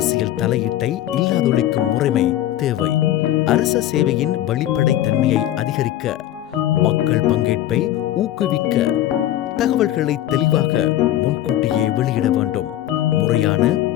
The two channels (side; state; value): right; quieter; 13.1 dB